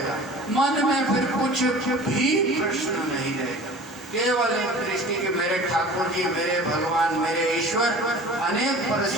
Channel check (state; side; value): normal; both; correlation 0.42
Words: मन में फिर कुछ भी प्रश्न नहीं रहेगा। केवल एक दृष्टि कि मेरे ठाकुर जी, मेरे भगवान, मेरे ईश्वर अनेक